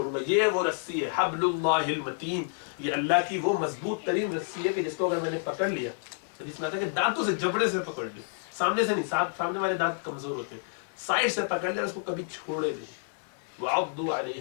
گا, یہ وہ رسی ہے حبل اللہ المتین, یہ اللہ کی وہ مضبوط ترین رسی ہے کہ جس کو اگر میں نے پکڑ لیا, حدیث میں آتا ہے کہ دانتوں سے جبڑے سے پکڑ لیا, سامنے سے نہیں, سامنے والے دانت کمزور ہوتے ہیں, سائڈ سے پکڑ لیا, اس کو کبھی چھوڑے نہیں. وَعَضُّوا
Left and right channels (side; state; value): right; silent; 58 dB below the other